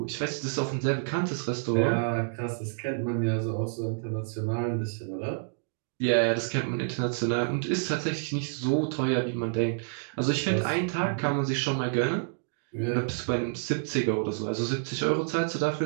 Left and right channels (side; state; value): left; silent; digital silence